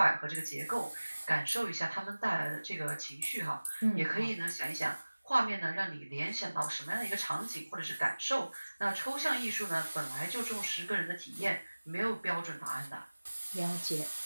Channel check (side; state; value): both; inverted; correlation -1.00